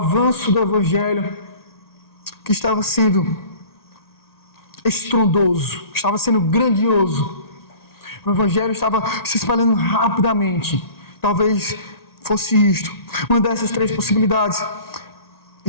do Evangelho que estava sendo estrondoso, estava sendo grandioso. O Evangelho estava se espalhando rapidamente. Talvez fosse isto. Uma dessas três possibilidades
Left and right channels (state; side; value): late; right; 1.9 ms